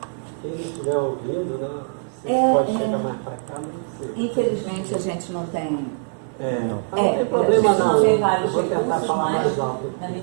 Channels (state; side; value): silent; left; 55 dB below the other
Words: Quem estiver ouvindo, né, você pode chegar mais para cá, não sei. Infelizmente a gente não tem. Não tem problema não. Tem vários vou tentar recursos, falar mas mais alto. na